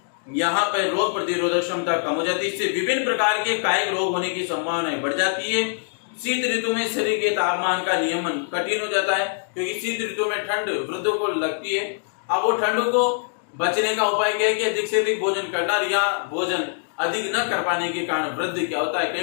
यहाँ पर रोग प्रतिरोधक क्षमता कम हो जाती है। इससे विभिन्न प्रकार के कायिक रोग होने की संभावना बढ़ जाती है। शीत ऋतु में शरीर के तापमान का नियमन कठिन हो जाता है, क्योंकि शीत ऋतु में ठंड वृद्धों को लगती है। अब वो ठंडों को बचने का उपाय क्या है कि अधिक से अधिक भोजन करना, या भोजन अधिक न कर पाने के कारण वृद्ध क्या होता है,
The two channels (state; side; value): silent; right; digital silence